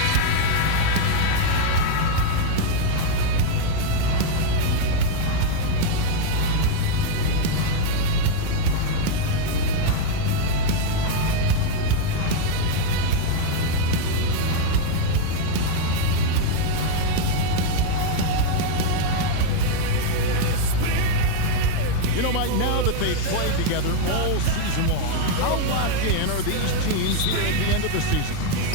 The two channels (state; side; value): different; both; correlation 0.00